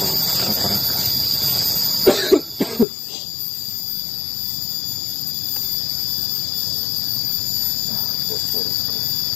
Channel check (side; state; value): right; drops out; at 2.9 s